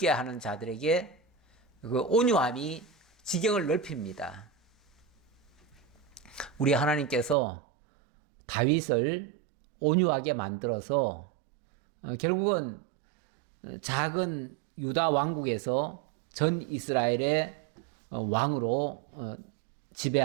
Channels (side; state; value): left; drops out; at 7.4 s